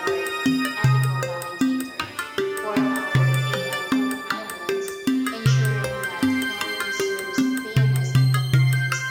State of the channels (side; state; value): both; identical; correlation 1.00